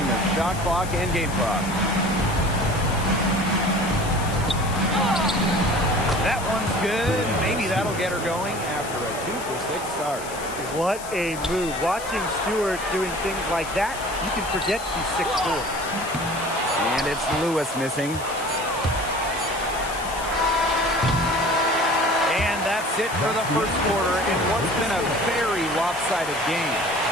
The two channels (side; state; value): left; noise; hiss, 13 dB below the sound